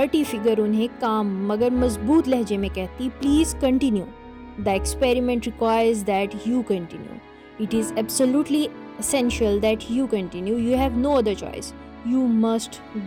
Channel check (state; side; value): identical; both; correlation 1.00